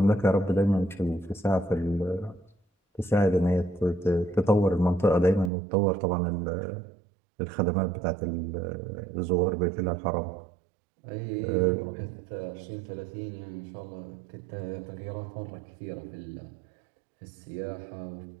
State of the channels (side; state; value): left; drops out; at 5.5 s